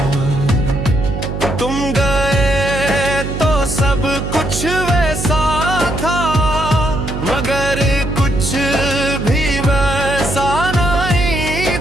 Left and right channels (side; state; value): right; noise; hum, 5 dB below the sound